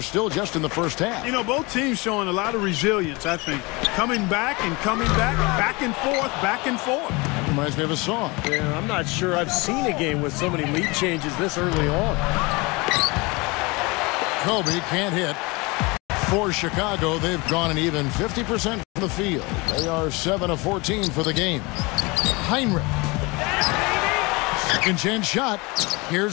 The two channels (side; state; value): right; quieter; 25.7 dB